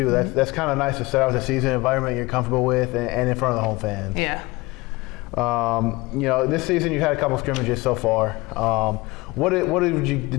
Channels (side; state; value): right; quieter; 22.5 dB